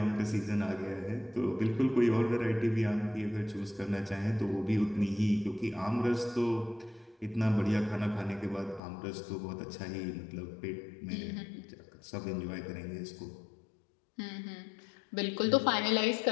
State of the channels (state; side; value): drops out; right; at 8.8 s